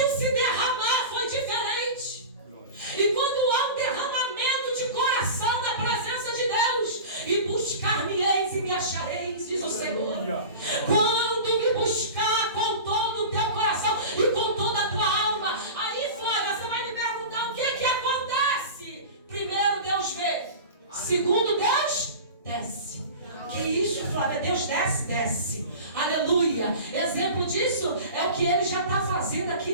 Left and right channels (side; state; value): both; inverted; correlation -0.33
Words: o se derramar foi diferente. E quando há um derramamento de coração na presença de Deus, e buscar-me-eis e me achareis, diz o Senhor. Quando me buscar com todo o teu coração e com toda a tua alma, aí Flávia, você vai me perguntar o que acontece. Primeiro, Deus vê. Segundo, Deus desce. Que isso, Flávia? Deus desce, desce. Aleluia. Exemplo disso é o que Ele já está fazendo